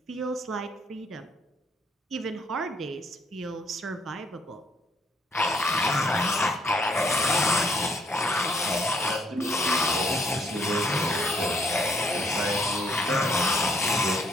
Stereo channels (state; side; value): normal; both; correlation 0.67